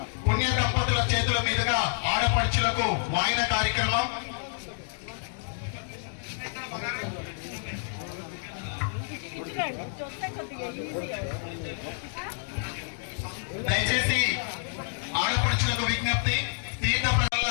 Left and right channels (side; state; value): right; silent; digital silence